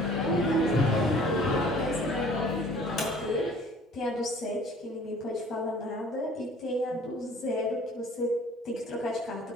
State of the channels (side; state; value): both; normal; correlation 0.51